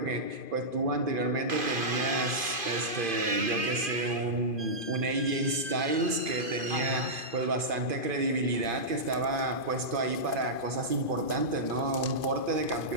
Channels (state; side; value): late; left; 2.5 ms